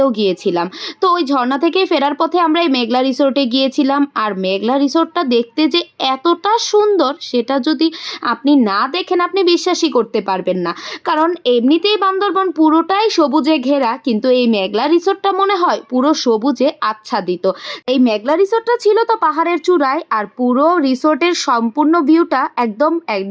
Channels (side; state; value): both; identical; correlation 1.00